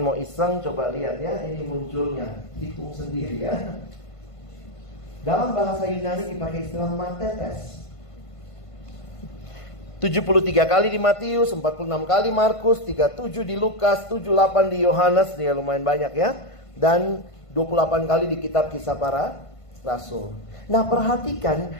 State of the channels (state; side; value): late; right; 1.5 ms